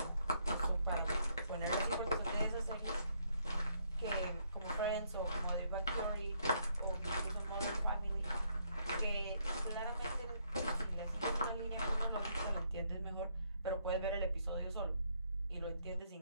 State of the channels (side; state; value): both; inverted; correlation -0.71